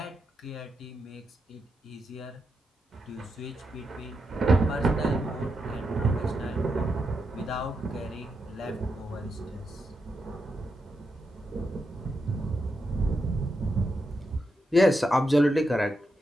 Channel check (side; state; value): both; normal; correlation 0.85